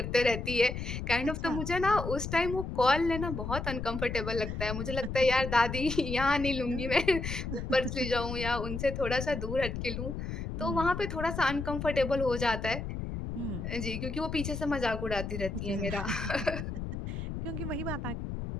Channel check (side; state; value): left; noise; rumble, 5 dB below the sound